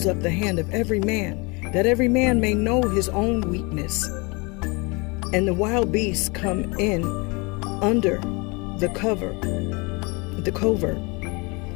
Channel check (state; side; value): quieter; right; 28.5 dB